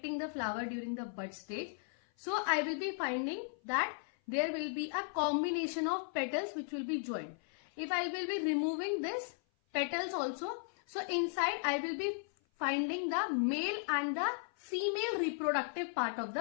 the flower during the bud stage. So I will be finding that there will be a combination of petals which will be joined. If I will be removing this petals also, so inside I will be finding the male and the female reproductive part of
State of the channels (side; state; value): right; silent; 54 dB below the other